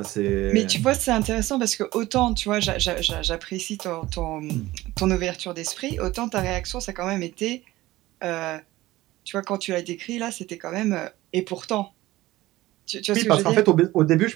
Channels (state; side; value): quieter; left; 17.6 dB